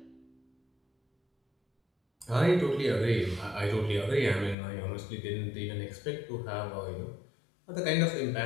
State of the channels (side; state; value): right; drops out; at 4.5 s